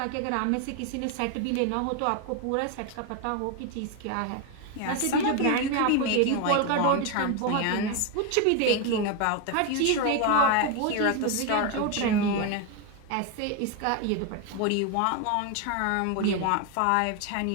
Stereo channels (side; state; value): both; different; correlation 0.01